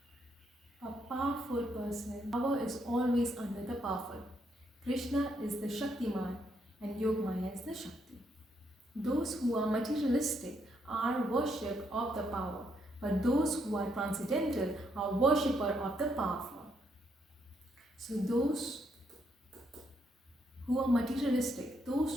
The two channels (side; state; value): both; normal; correlation 0.75